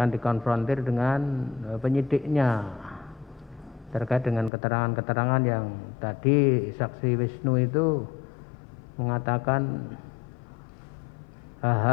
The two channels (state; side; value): drops out; right; at 4.5 s